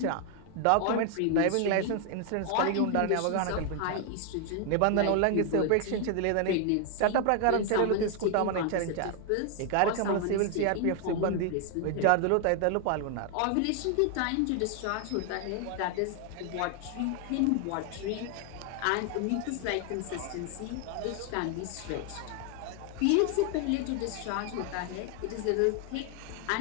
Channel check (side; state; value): both; different; correlation 0.00